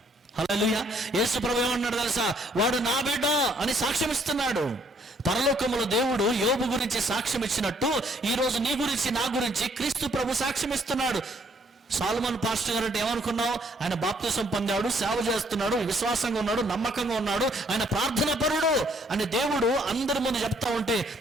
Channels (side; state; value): both; normal; correlation 0.66